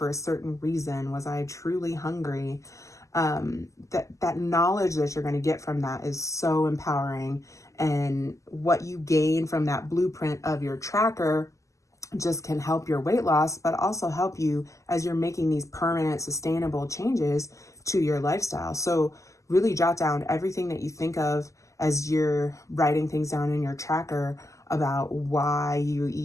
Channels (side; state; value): right; late; 0.16 ms